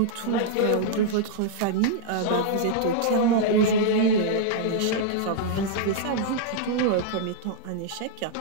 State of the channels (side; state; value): both; different; correlation -0.01